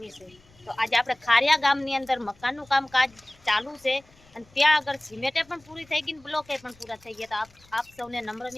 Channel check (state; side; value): noise; left; rumble, 29 dB below the sound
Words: છે। તો આજે આપણે ખારિયા ગામની અંદર મકાનનું કામકાજ ચાલુ છે અને ત્યાં આગળ સિમેન્ટે પણ પૂરી થઈ ગઈ, બ્લોકે પણ પૂરા થઈ ગયા। તો આપ સૌને નમ્ર